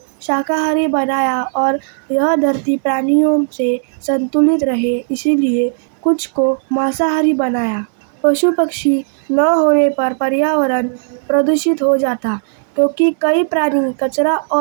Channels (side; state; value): left; silent; digital silence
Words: शाकाहारी बनाया, और यह धरती प्राणियों से संतुलित रहे, इसीलिए कुछ को मांसाहारी बनाया। पशु पक्षी न होने पर पर्यावरण प्रदूषित हो जाता, क्योंकि कई प्राणी कचरा